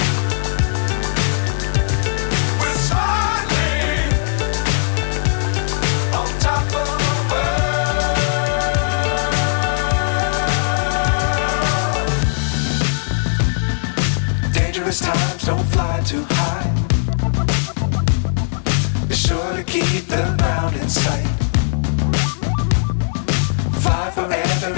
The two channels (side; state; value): right; silent; digital silence